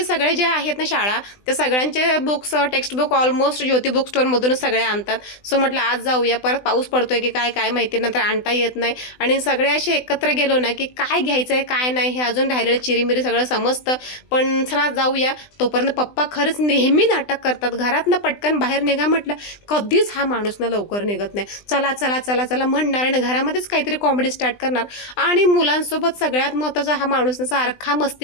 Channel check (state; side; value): late; right; 20 ms